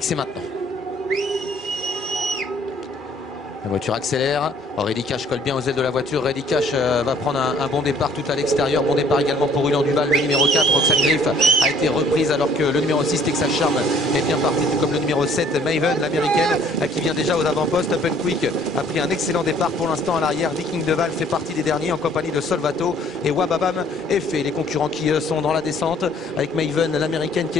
C'est maintenant. La voiture accélère. Reddy Cash colle bien aux ailes de la voiture. Reddy Cash va prendre un bon départ tout à l'extérieur. Bon départ également pour Ulan Duval. Le numéro 4, Roxane Griff, a été reprise alors que le numéro 6, Texas Charm, est bien parti. Tout comme le numéro 7, Maven, l'américaine, qui vient déjà aux avant-postes. Open Quick a pris un excellent départ pour l'instant à l'arrière. Viking Deval fait partie des derniers en compagnie de Solvato et Wababam est fait. Les concurrents qui sont dans la descente avec Maven, l'américaine, qui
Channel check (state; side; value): normal; both; correlation 0.59